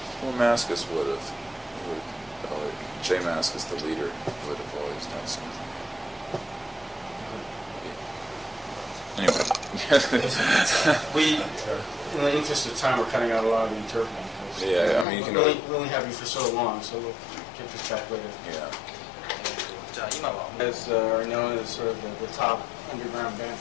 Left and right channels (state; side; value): drops out; right; at 15.1 s